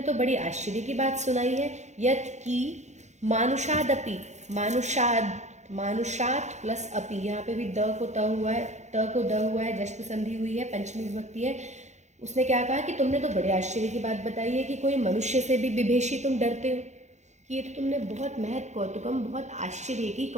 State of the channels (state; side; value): late; left; 0.33 ms